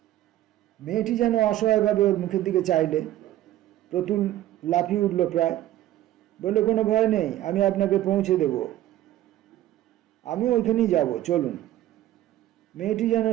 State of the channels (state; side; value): quieter; left; 13.7 dB